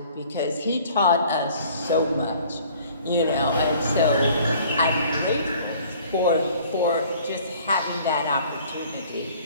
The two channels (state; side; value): inverted; both; correlation -0.53